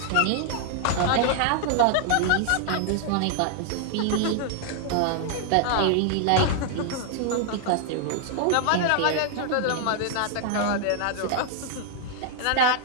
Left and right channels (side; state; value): both; different; correlation 0.00